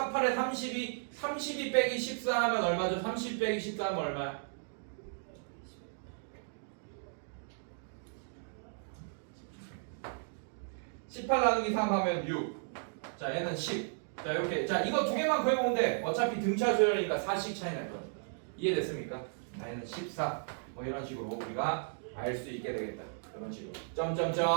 8에 32 빼기 14 하면 얼마죠? 30 빼기 14 하면 얼마야? 18 나누기 3 하면 6 자 얘는 10 자 이렇게 자 이거 두 개만 구해보면 돼 어차피 등차 수열이니까 4씩 차이 날 거야 이해됐습니까? 자 얘는 14 뭐 이런 식으로 우리가 알 수 있게 되겠다 이런 식으로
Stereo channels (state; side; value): silent; left; digital silence